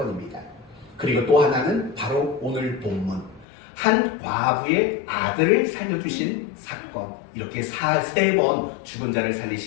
그리고 또 하나는 바로 오늘 본문 한 과부의 아들을 살려주신 사건, 이렇게 3번 죽은 자를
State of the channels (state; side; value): drops out; right; at 3.5 s